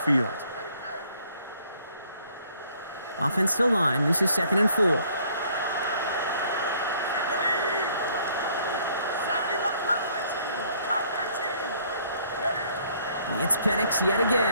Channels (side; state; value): both; inverted; correlation -0.62